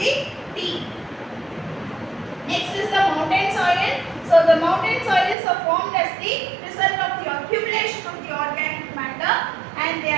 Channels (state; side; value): drops out; left; at 5.4 s